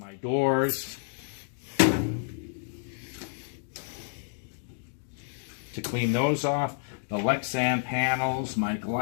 doors to clean those off, the Lexan panels, my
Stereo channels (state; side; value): silent; right; digital silence